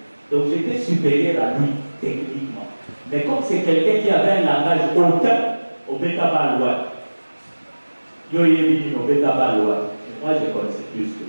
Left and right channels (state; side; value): inverted; both; correlation -1.00